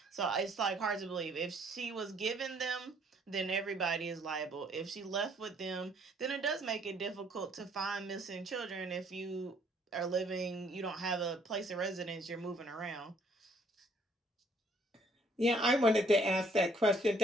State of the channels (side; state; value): both; normal; correlation 0.63